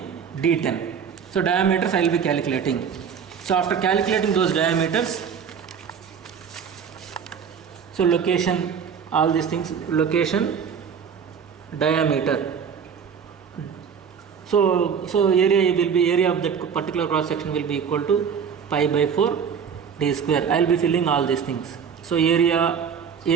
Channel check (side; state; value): left; quieter; 7.0 dB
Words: D10. So diameters I will be calculating. So after calculating those diameters, so location, all these things, location, diameter. So area of that particular cross section will be equal to pi by 4 d square. I will be filling all these things. So